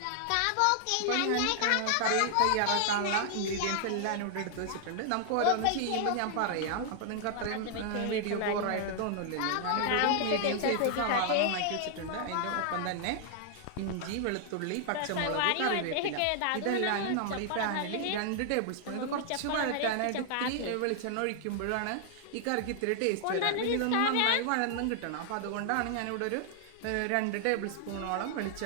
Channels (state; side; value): different; both; correlation 0.00